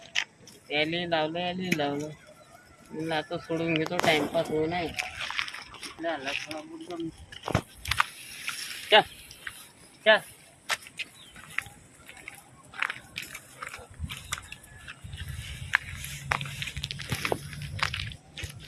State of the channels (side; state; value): both; identical; correlation 1.00